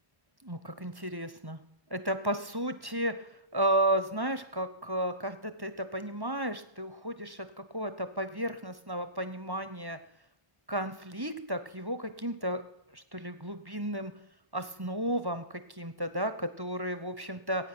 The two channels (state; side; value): late; left; 1.1 ms